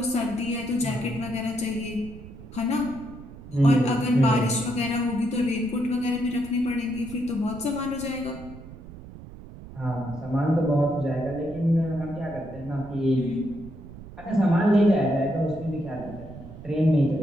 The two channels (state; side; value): noise; right; rumble, 15 dB below the sound